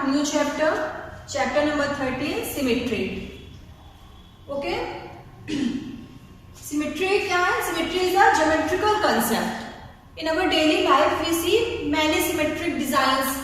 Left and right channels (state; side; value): identical; both; correlation 1.00